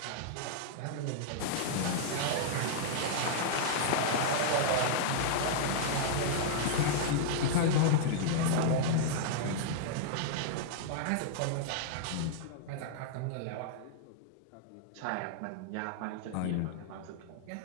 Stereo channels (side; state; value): both; different; correlation -0.01